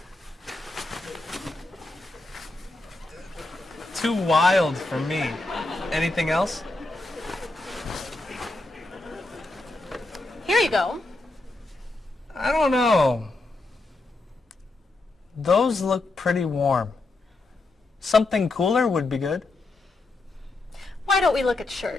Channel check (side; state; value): right; quieter; 3.0 dB